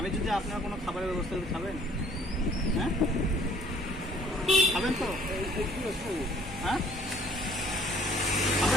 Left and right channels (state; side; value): normal; both; correlation 0.57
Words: যদি আপনার কোনো খাবারের ব্যবস্থা করে খাবেন? হ্যাঁ, খাবেন তো? হ্যাঁ,